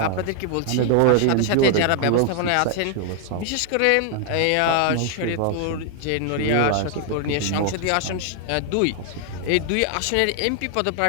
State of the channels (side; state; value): both; different; correlation 0.00